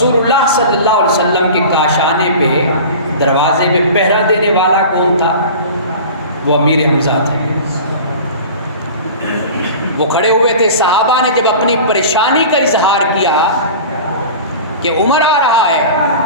اللہ صلی اللہ علیہ وسلم کے کاشانے پہ، دروازے پہ پہرا دینے والا کون تھا؟ وہ امیر حمزہ تھے۔ وہ کھڑے ہوئے تھے۔ صحابہ نے جب اپنی پریشانی کا اظہار کیا کہ عمر آ رہا ہے،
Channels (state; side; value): inverted; both; correlation -0.37